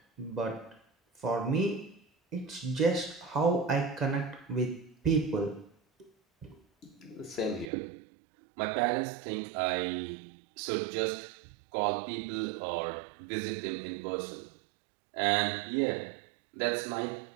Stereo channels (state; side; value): drops out; left; at 7.7 s